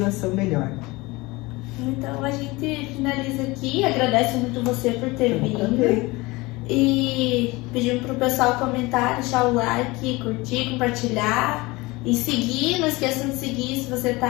melhor. Então a gente finaliza aqui, agradece muito você por ter vindo. E pedimos para o pessoal comentar, deixar o like, curtir, compartilhar. E seguir, não esqueçam de seguir se você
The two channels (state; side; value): quieter; right; 22.6 dB